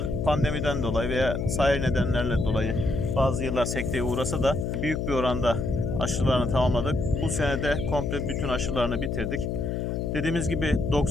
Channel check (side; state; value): left; noise; hum, 1 dB below the sound